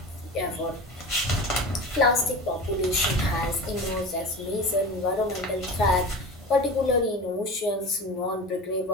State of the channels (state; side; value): normal; both; correlation 0.31